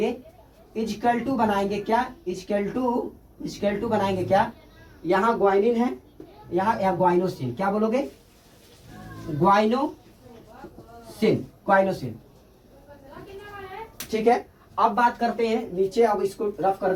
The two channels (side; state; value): both; identical; correlation 1.00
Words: इजकल टू बनाएंगे क्या, इजकल टू बनाएंगे क्या, यहाँ ग्वाइनिन है, यहाँ ग्वाइनोसिन, क्या बोलोगे, ग्वाइनोसिन, ग्वाइनोसिन, ठीक है। अब बात करते हैं नीचे, अब इसको रफ कर